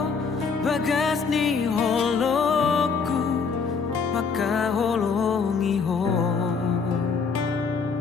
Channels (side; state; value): right; quieter; 5.3 dB